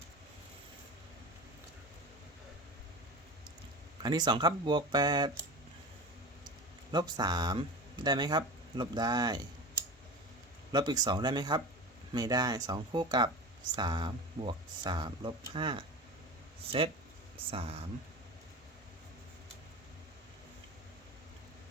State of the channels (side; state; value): both; normal; correlation 0.31